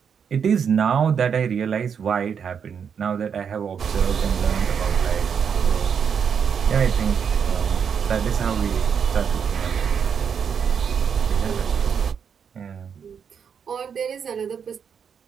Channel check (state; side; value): quieter; left; 7.1 dB